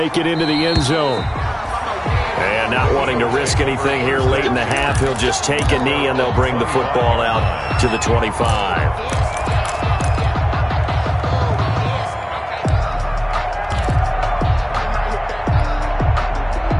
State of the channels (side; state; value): both; identical; correlation 1.00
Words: it into the end zone. And not wanting to risk anything here late in the half, he'll just take a knee and they'll bring the football out to the 25.